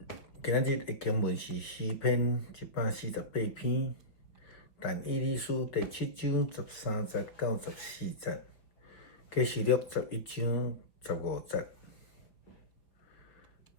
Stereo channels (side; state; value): right; late; 5.0 ms